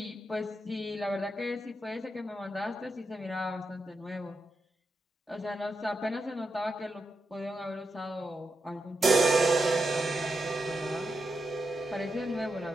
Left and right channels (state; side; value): normal; both; correlation 0.86